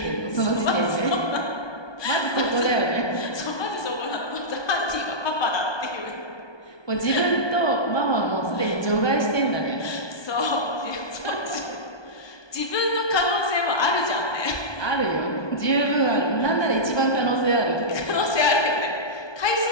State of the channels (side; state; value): right; late; 1.2 ms